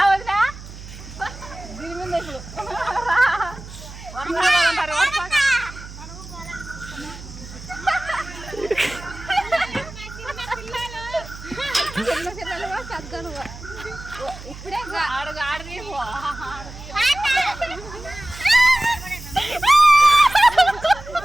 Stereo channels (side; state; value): right; noise; hum, 14 dB below the sound